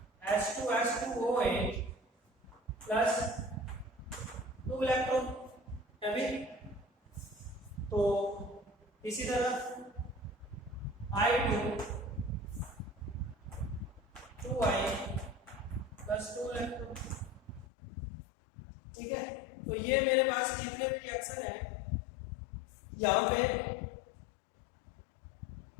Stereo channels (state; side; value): drops out; right; at 17.7 s